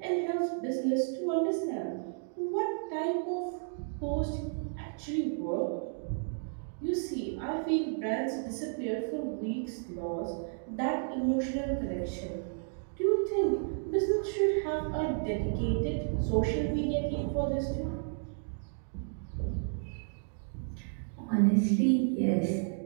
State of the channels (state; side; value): silent; left; digital silence